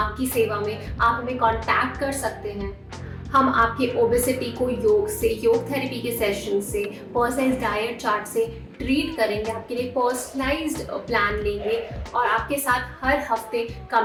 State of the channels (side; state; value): both; identical; correlation 1.00